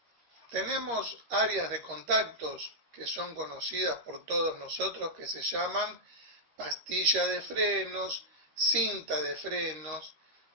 Tenemos áreas de contactos que son conocidas por todos nosotros, que se llaman pastilla de frenos, cinta de frenos.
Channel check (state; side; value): late; left; 13 ms